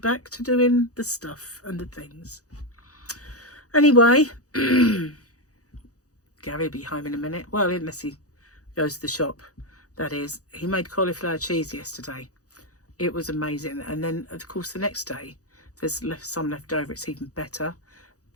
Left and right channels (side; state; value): right; late; 0.66 ms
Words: to doing the stuff and the things. Anyway, Gary will be home in a minute. Well, unless he goes to the shop. That is, he made cauliflower cheese yesterday. It was amazing. And then, of course, the next day, there's some left over. It's even better.